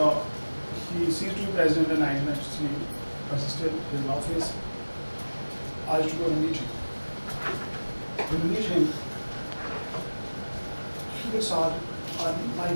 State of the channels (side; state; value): both; inverted; correlation -1.00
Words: he ceased to be president in 1993, but he's still in office. I used to go to meet him. When we meet him, he was on my